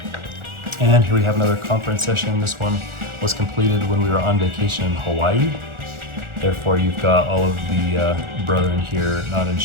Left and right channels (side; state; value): left; late; 1.4 ms